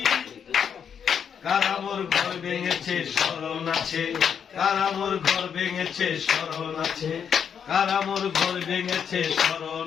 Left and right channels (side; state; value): right; quieter; 7.6 dB